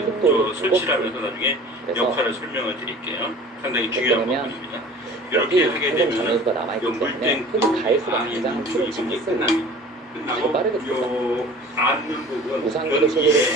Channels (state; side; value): normal; both; correlation 0.44